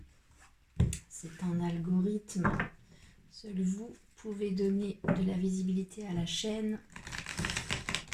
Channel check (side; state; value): both; identical; correlation 1.00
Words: C'est un algorithme. Seul vous pouvez donner de la visibilité à la chaîne